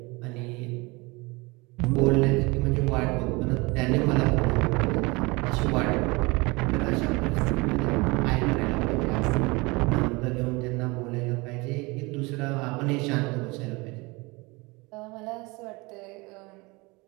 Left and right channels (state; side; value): quieter; left; 25.3 dB